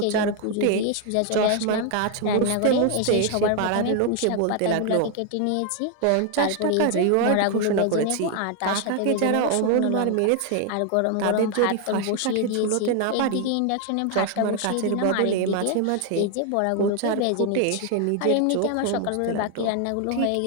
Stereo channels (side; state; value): both; different; correlation 0.00